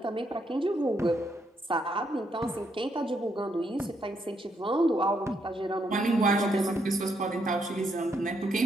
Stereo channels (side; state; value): both; normal; correlation 0.76